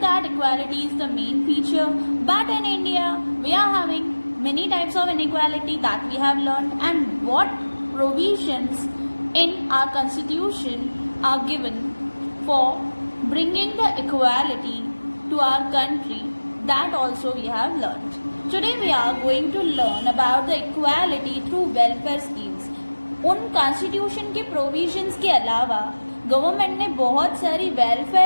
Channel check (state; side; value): inverted; both; correlation -1.00